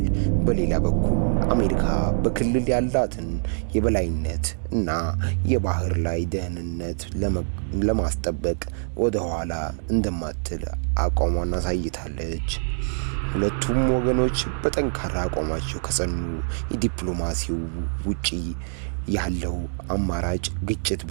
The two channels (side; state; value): left; silent; digital silence